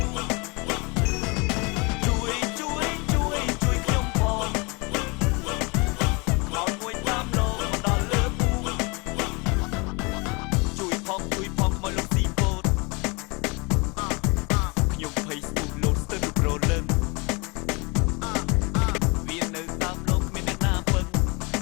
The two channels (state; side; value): quieter; right; 28.8 dB